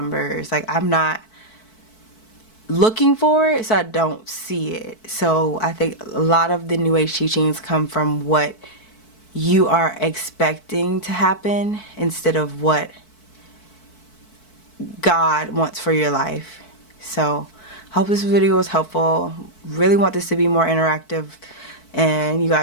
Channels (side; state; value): right; late; 4.6 ms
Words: Like, I'm not looking for it, so I don't see it. So I think a lot of the New Age teachings come from what you are expecting to happen instead of what God wants for your life. So hope this video was helpful. Really want this to be more interactive, and you